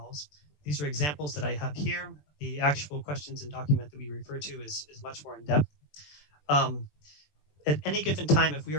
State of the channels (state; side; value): late; right; 20 ms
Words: These are examples that I have here. The actual questions and document that we refer to is much more in depth. At any given time, if we